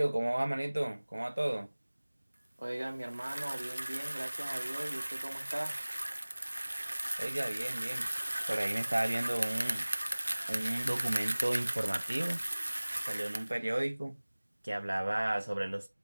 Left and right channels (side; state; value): both; inverted; correlation -1.00